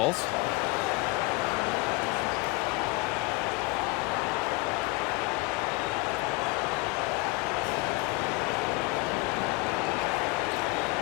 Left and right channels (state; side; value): quieter; right; 24.0 dB